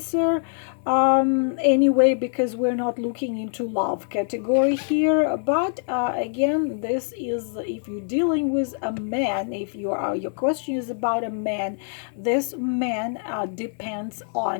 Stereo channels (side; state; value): right; silent; digital silence